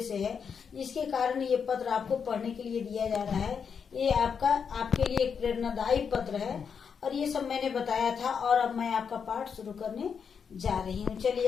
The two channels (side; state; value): right; quieter; 6.6 dB